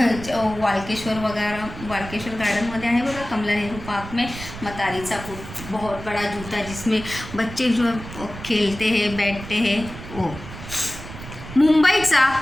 वालकेश्वर गार्डनमध्ये आहे बघा, कमला नेहरू पार्क में मतारीचा बूट, बहुत बड़ा जूता जिसमें बच्चे जो खेलते हैं, बैठते हैं, वो. मुंबईचा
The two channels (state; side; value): noise; right; rumble, 12 dB below the sound